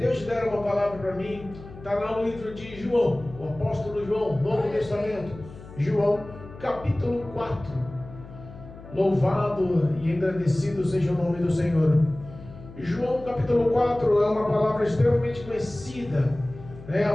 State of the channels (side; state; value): left; noise; hum, 17 dB below the sound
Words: deram uma palavra para mim, está lá no livro de João, o apóstolo João, Novo Testamento, João, capítulo 4. Louvado e engrandecido seja o nome do Senhor. João, capítulo 4, é uma palavra extremamente conhecida, a